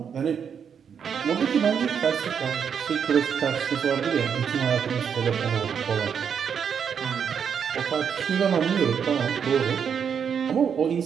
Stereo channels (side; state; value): left; quieter; 7.3 dB